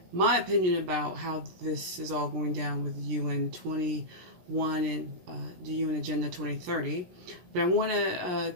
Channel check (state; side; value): late; left; 17 ms